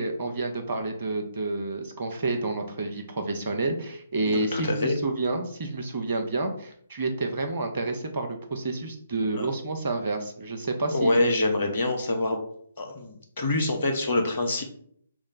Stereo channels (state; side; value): inverted; both; correlation -0.74